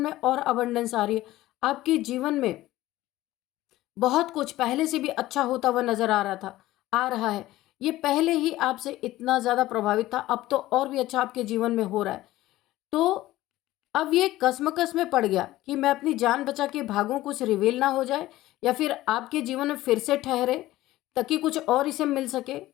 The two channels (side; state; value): right; quieter; 16.3 dB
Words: और अबंडेंस आ रही है, आपके जीवन में बहुत कुछ पहले से भी अच्छा होता हुआ नजर आ रहा है। ये पहले ही आपसे इतना ज़्यादा प्रभावित था, अब तो और भी अच्छा आपके जीवन में हो रहा है। तो अब ये कसमकस में पड़ गया कि मैं अपनी जान बचा के भागूं, कुछ रिवील ना हो जाए, या फिर आपके जीवन में फिर से ठहरे ताकि कुछ और इसे मिल सके।